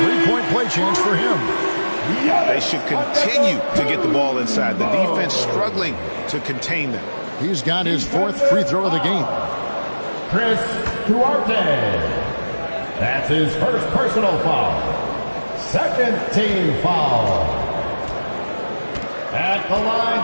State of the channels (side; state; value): both; inverted; correlation -1.00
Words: 3-point play chance for him. They should continue to get the ball inside. The defense struggling to contain them. He's got his 4th free throw of the game. Chris Duarte. That's his first personal foul. Second team foul. At the line